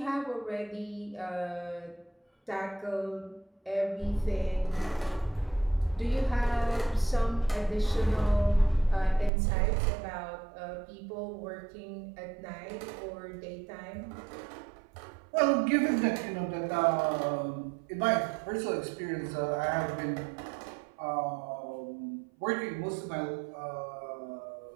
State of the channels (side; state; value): left; drops out; at 9.3 s